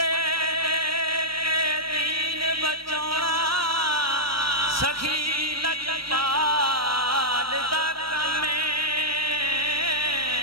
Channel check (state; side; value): late; left; 0.75 ms